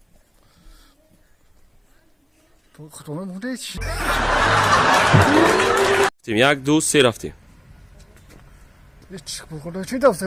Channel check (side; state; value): both; identical; correlation 1.00